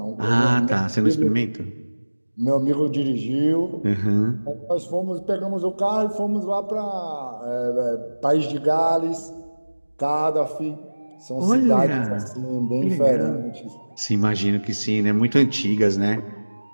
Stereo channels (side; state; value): both; inverted; correlation -1.00